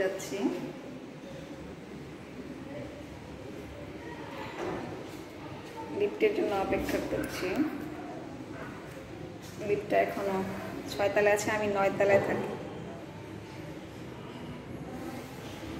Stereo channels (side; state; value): both; identical; correlation 1.00